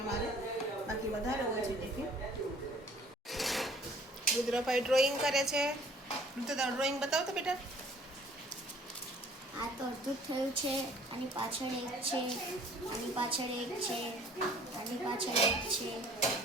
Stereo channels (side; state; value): both; normal; correlation 0.54